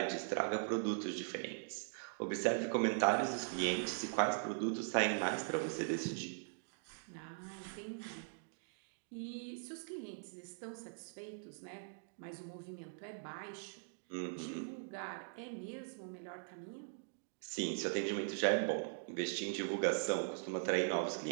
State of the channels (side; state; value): left; silent; digital silence